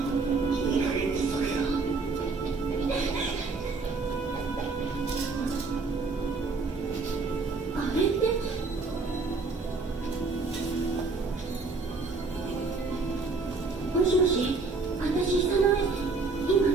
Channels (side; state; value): left; quieter; 4.0 dB